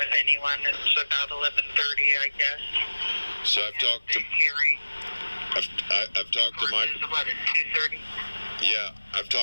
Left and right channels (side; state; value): both; inverted; correlation -1.00